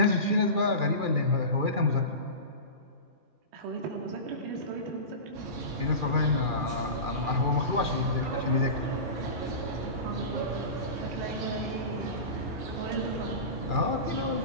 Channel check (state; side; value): late; left; 2.4 ms